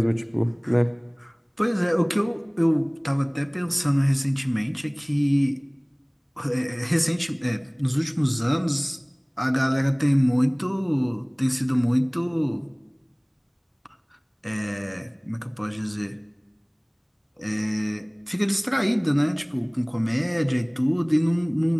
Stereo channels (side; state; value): both; identical; correlation 1.00